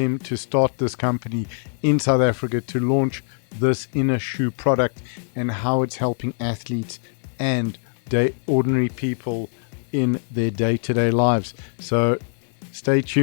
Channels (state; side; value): silent; right; digital silence